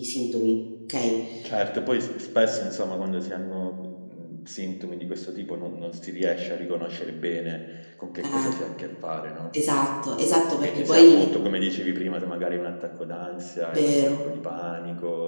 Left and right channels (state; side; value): inverted; both; correlation -1.00